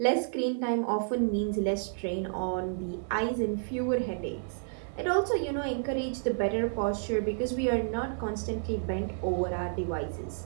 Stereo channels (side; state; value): left; silent; digital silence